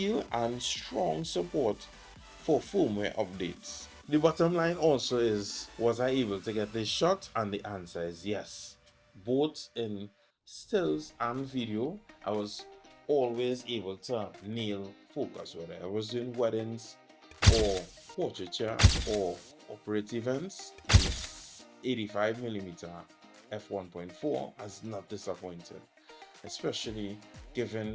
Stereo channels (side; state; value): both; identical; correlation 1.00